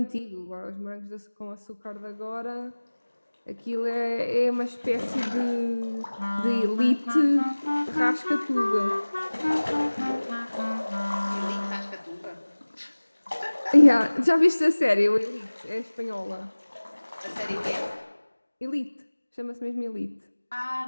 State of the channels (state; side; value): inverted; both; correlation -1.00